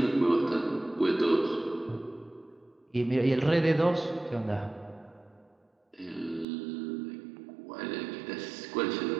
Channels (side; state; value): left; drops out; at 6.5 s